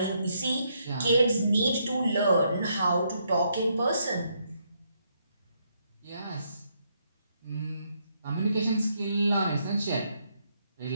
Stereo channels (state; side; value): inverted; both; correlation -0.76